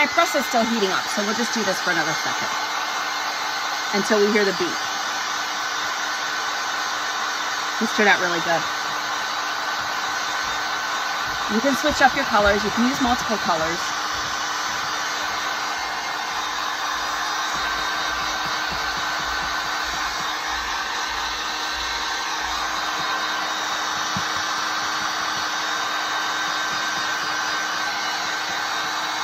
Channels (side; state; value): both; identical; correlation 1.00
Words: press is still heating up, so we'll just do this for another second until we hear the beep. This turned out really good. You can switch up your colors. You can use multiple colors.